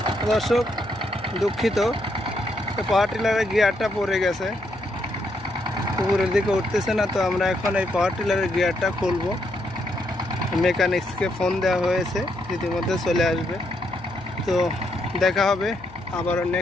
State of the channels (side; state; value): left; noise; hum, 20 dB below the sound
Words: দর্শক, দুঃখিত, পাওয়ার টিলারের গিয়ারটা পড়ে গেছে, উপরের দিকে উঠতেছে না। তো আমরা এখন এই পাওয়ার টিলারের গিয়ারটা খুলবো। মেকানিক্সকে ফোন দেওয়া হয়েছে, ইতিমধ্যে চলে আসবে। তো দেখা হবে আবারও